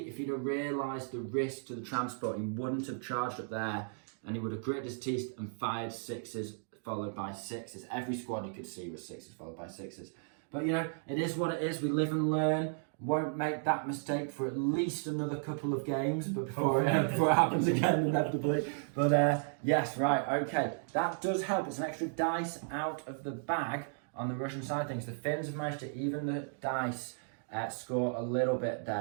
if he'd have realised the risk to the transport, he wouldn't have charged up there, and he would have gritted his teeth and fired 6s followed by 6s. Every squad you could see was 6s followed by 6s. But you know, it is what it is. We live and learn. Won't make that mistake for at least another couple of games, but before it happens again inevitably. But yes, right, okay. That does help. It's an extra dice out of the bag on the Russian side of things. The Finns have managed to even the dice score a little bit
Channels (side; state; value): left; silent; digital silence